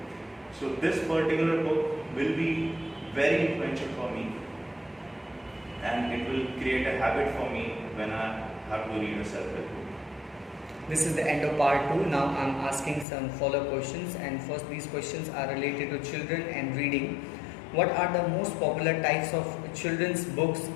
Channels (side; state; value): right; drops out; at 13.1 s